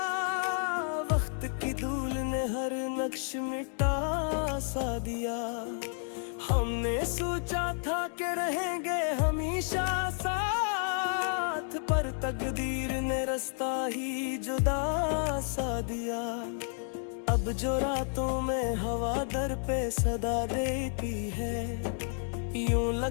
वक्त की धूल ने हर नक्श मिटा सा दिया। हमने सोचा था कि रहेंगे हमेशा साथ, पर तकदीर ने रास्ता ही जुदा सा दिया। अब जो रातों में हवा दर पे सदा देती है, यूं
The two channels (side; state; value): right; silent; 57 dB below the other